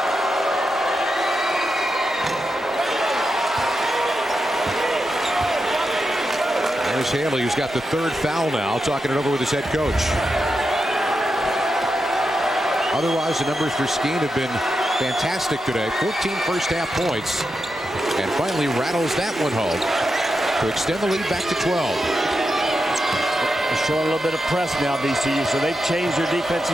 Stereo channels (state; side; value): normal; both; correlation 0.87